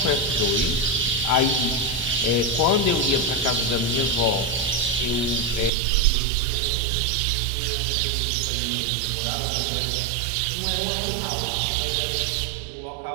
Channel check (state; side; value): drops out; left; at 5.7 s